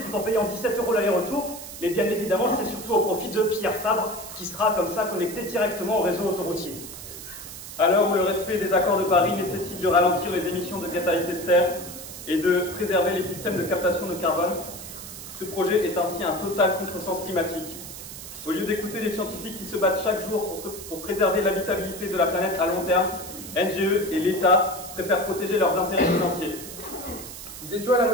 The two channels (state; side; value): noise; right; hiss, 12 dB below the sound